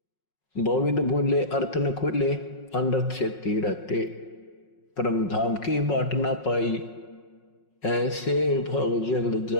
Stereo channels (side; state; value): right; late; 5.5 ms